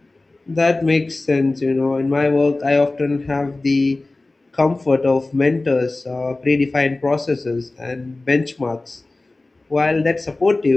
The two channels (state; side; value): quieter; right; 3.1 dB